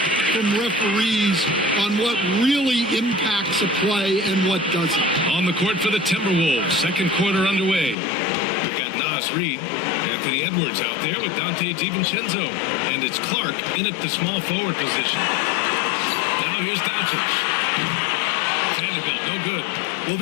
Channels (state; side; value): drops out; right; at 8.0 s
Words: from referees on what really impacts a play and what doesn't. On the court for the Timberwolves, second quarter underway. We've got Nas Reed, Anthony Edwards out there with Dante DiVincenzo, and it's Clark in at the small forward position. Now here's Doncic. Vanderbilt, no good. Well,